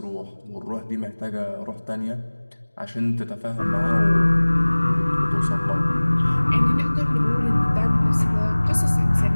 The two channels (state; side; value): inverted; both; correlation -1.00